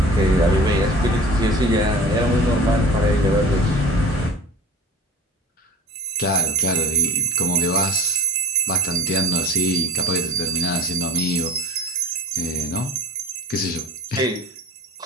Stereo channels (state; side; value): normal; both; correlation 0.35